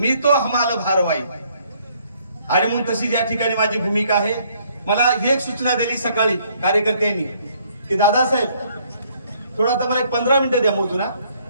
तो हमाल भारवाई. आणि म्हणून तशी या ठिकाणी माझी भूमिका आहे. मला एक सूचना दिली सकाळी कार्यकर्त्यांनी की दादासाहेब थोडा आता मला एक 15 मिनिटं द्या मोजून.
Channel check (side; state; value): both; inverted; correlation -0.65